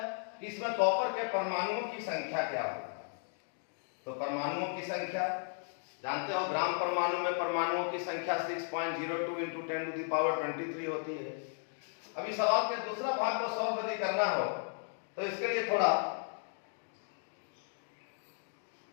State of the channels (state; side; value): silent; right; 54 dB below the other